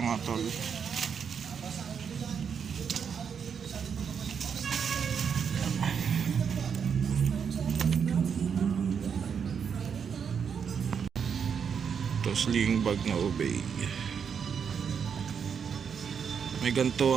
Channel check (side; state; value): left; quieter; 6.9 dB